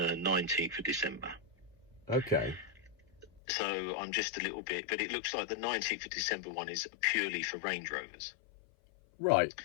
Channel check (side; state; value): right; drops out; at 3.4 s